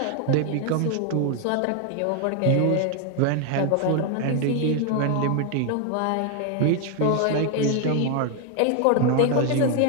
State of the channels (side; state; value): both; different; correlation 0.01